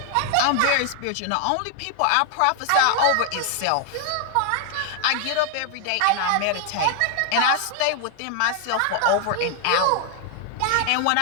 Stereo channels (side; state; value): both; different; correlation 0.00